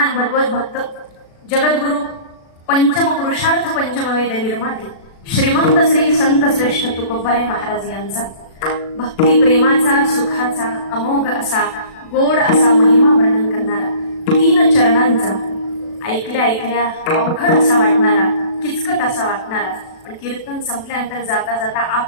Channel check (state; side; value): late; right; 36 ms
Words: भगवत भक्त जगद्गुरु पंचम पुरुषार्थ पंचमवेद निर्माते श्रीमंत श्री संत श्रेष्ठ तुकोबाराय महाराज यांचा भक्ती प्रेमाचा सुखाचा अमोघ असा गोड असा महिमा वर्णन करणारा 3 चरणांचा ऐकल्या ऐकल्या अवघड असा वाटणारा किचकट असा वाटणारा पण कीर्तन संपल्यानंतर जाता जाता